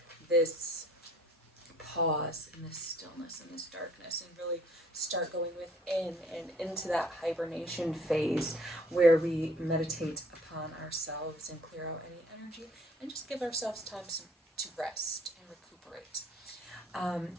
this pause and this stillness and this darkness and really start going within and into that hibernation phase where we meditate upon ourselves and clear out any energy and just give ourselves time to rest and recuperate.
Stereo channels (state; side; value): normal; both; correlation 0.57